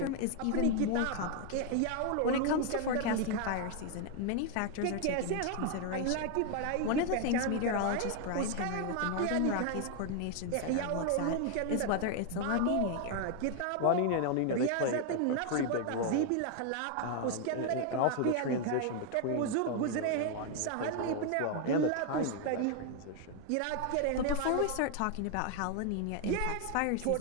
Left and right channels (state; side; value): different; both; correlation 0.00